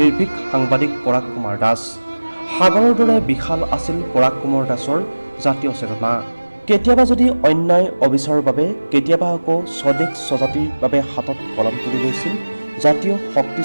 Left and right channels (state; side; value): inverted; both; correlation -1.00